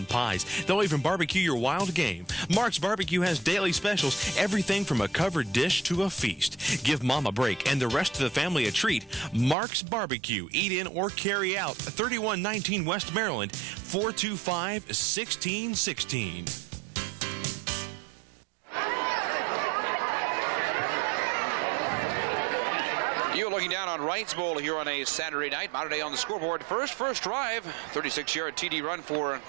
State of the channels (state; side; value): drops out; left; at 9.6 s